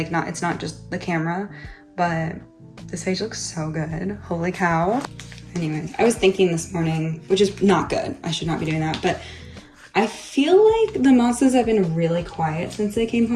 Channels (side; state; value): both; identical; correlation 1.00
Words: it's not just the camera, but this page looks so good. Holy cow. Anyways, I was thinking this morning, which is not good. I should not be doing that, but I feel like the Monstas have been really quiet since they came